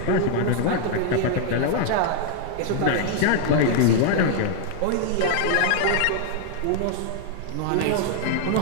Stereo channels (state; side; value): different; both; correlation 0.00